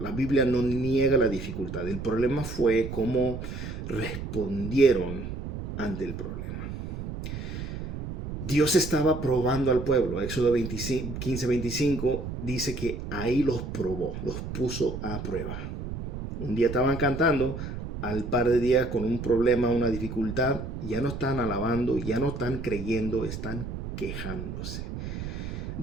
Biblia no niega la dificultad, el problema fue cómo respondieron ante el problema. Dios estaba probando al pueblo. Éxodo 15, 25 dice que ahí los probó, los puso a prueba. Un día estaban cantando, al par de días con un problema, una dificultad, ya no están alabando, ya no están creyendo, están quejándose.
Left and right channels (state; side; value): noise; right; rumble, 7 dB below the sound